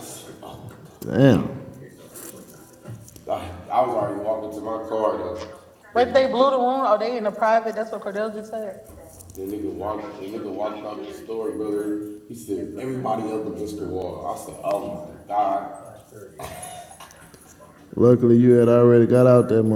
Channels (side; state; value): both; identical; correlation 1.00